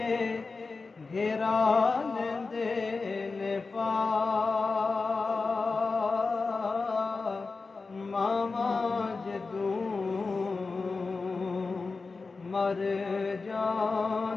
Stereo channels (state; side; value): quieter; right; 4.1 dB